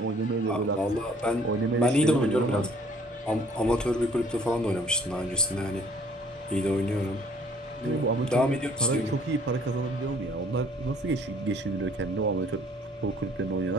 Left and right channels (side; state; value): both; normal; correlation 0.58